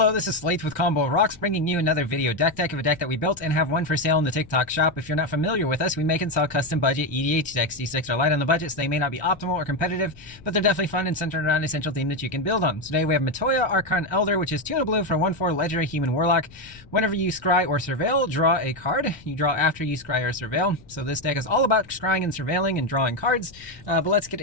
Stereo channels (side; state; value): left; noise; rumble, 22 dB below the sound